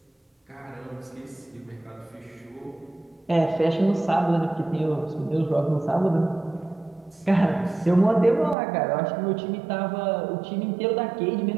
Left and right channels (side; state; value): left; drops out; at 8.6 s